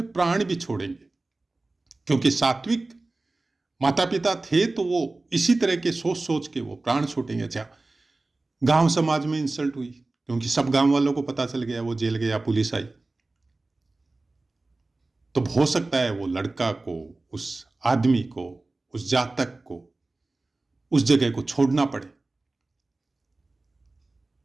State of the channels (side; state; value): left; quieter; 3.2 dB